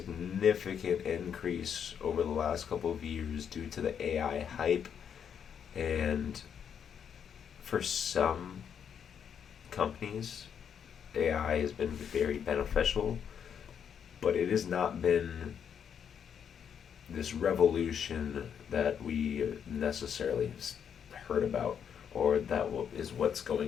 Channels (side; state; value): right; quieter; 7.9 dB